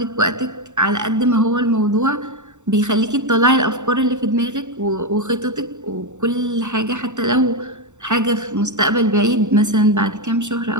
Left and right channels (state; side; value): late; left; 0.84 ms